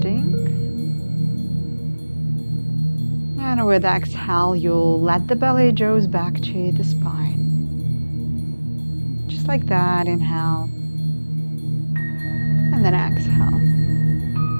And with exhale, you'll let the belly draw back to the spine. Just like that, inhale. And then exhale.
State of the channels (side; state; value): both; inverted; correlation -1.00